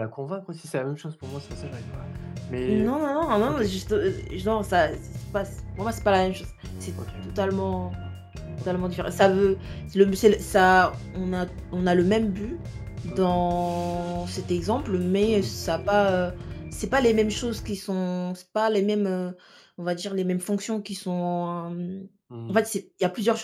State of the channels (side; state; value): both; identical; correlation 1.00